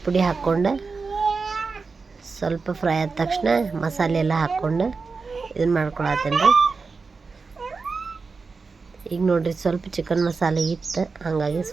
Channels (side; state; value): left; quieter; 4.5 dB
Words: ಪುಡಿ ಹಾಕ್ಕೊಂಡು ಸ್ವಲ್ಪ ಫ್ರೈ ಆದ ತಕ್ಷಣ ಮಸಾಲೆ ಎಲ್ಲ ಹಾಕ್ಕೊಂಡು ಇದನ್ನು ಮಾಡ್ಕೊಳತ್ತೇನೆ ರೀ. ಈಗ ನೋಡ್ರಿ ಸ್ವಲ್ಪ ಚಿಕನ್ ಮಸಾಲೆ ಇತ್ತು, ಹಾಗಾಗಿ